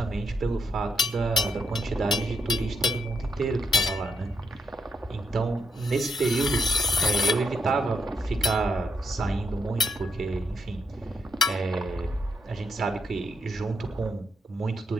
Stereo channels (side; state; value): both; normal; correlation 0.80